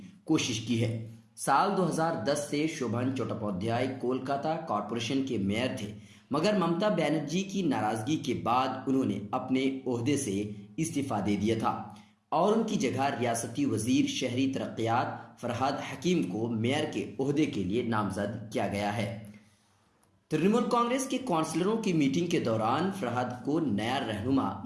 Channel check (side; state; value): both; identical; correlation 1.00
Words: کوشش کی ہے۔ سال 2010 سے شوبھن چٹوپادھیائے کولکاتہ کارپوریشن کے میئر تھے، مگر ممتا بنرجی کی ناراضگی کے بعد انہوں نے اپنے عہدے سے استعفیٰ دے دیا تھا اور ان کی جگہ ریاستی وزیر شہری ترقیات فرحاد حکیم کو میئر کے عہدے کے لیے نامزد کیا گیا ہے۔ ترنمول کانگریس کے کونسلروں کی میٹنگ کے دوران فرحاد کو نیا رہنما